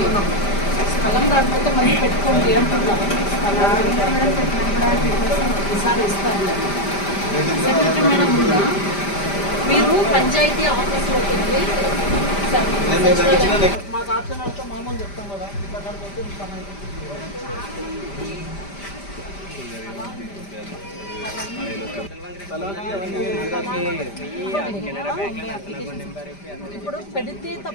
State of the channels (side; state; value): right; late; 5.1 ms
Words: స్థలం రాకపోతే మళ్ళీ పెట్టుకోండి అంటున్నాం. ఈసారి ఇస్తారు. సెక్రటరీ మేడం ఉందా? మీరు పంచాయతీ ఆఫీస్లోకి వెళ్ళి మా తాతతో మామూలు చెప్తాం కదా ఇప్పుడు పెడితే